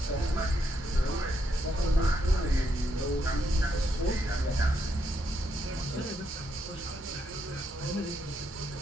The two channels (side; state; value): both; normal; correlation 0.78